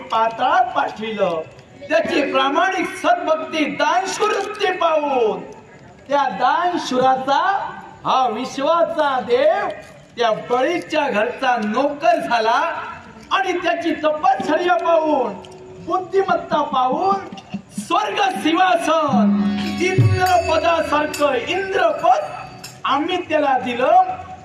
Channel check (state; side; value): identical; both; correlation 1.00